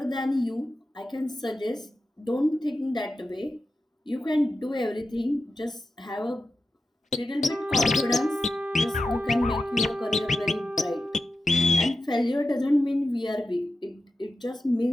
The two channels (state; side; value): normal; both; correlation 0.91